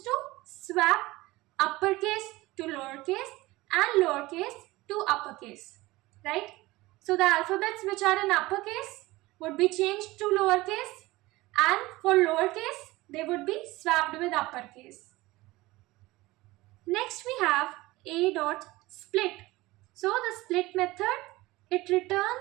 to swap uppercase to lowercase and lowercase to uppercase, right? So the alphabets which are in uppercase would be changed to lowercase, and for lowercase they would be swapped with uppercase. Next we have a dot split. So the split method, it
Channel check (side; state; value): left; quieter; 19.8 dB